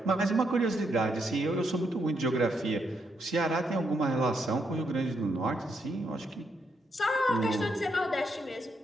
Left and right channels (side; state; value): both; normal; correlation 0.78